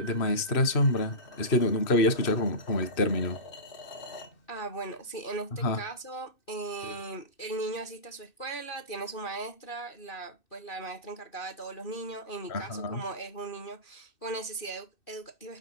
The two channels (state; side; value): late; right; 2.6 ms